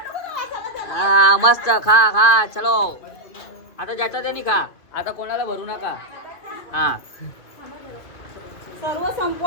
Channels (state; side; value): late; right; 2.4 ms